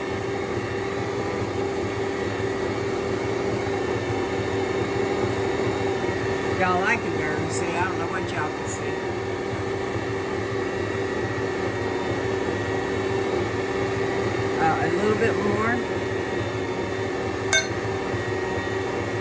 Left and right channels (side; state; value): both; identical; correlation 1.00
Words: Y'all, I can barely see. I don't know what y'all can see. A little bit more.